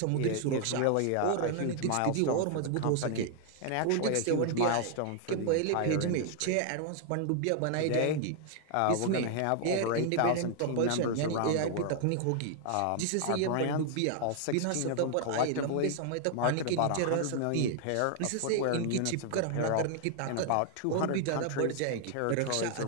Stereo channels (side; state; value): both; different; correlation 0.00